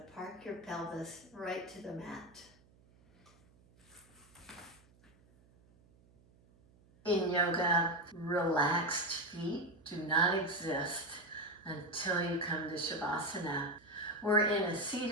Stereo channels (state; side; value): noise; right; hum, 29 dB below the sound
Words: park your pelvis right to the mat. In yoga, relaxed feet do not exist until you come to Shavasana. We're in a